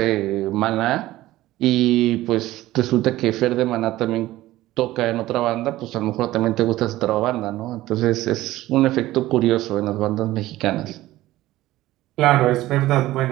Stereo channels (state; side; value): quieter; left; 16.3 dB